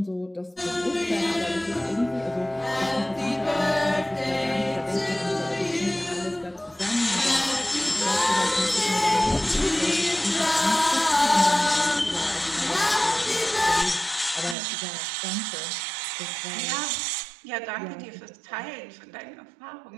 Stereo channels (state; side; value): drops out; left; at 14.6 s